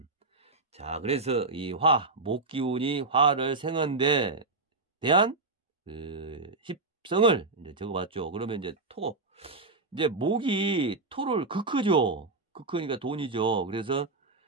자, 그래서 이 목 기운이 화를 생한데 대한 십성을 이제 적어봤죠. 그러면 이제 이제 목이 토를 극크죠. 극크니까 돈이죠. 그래서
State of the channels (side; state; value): left; quieter; 3.5 dB